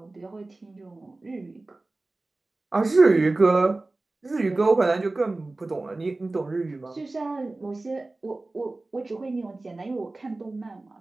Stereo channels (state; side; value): quieter; left; 3.1 dB